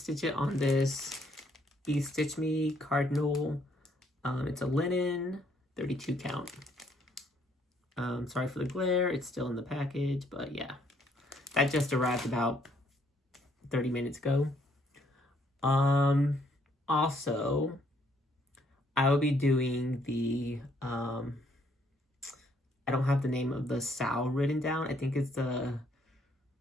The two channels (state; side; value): normal; both; correlation 0.68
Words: it on this Be Stitch Me Cardinal. It's a linen, 32 count. Sorry for the glare, it's still in the package, but yeah. That just arrived about 30 minutes ago. Also, I will be doing the, I don't have the name of the Sal written down. I think it's the